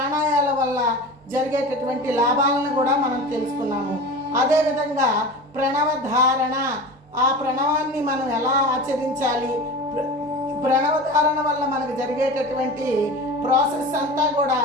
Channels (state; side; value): normal; both; correlation 0.32